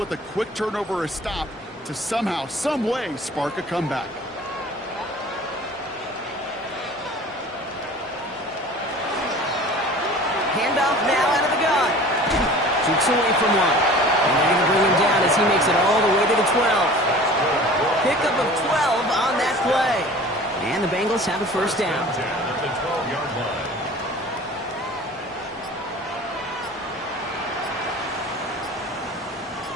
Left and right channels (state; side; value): normal; both; correlation 0.43